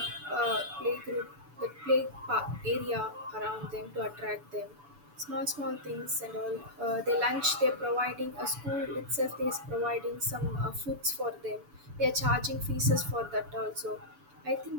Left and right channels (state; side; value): late; left; 7.0 ms